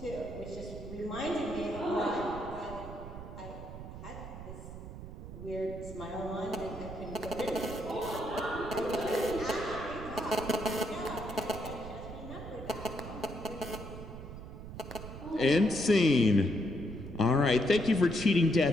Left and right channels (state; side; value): noise; right; rumble, 11 dB below the sound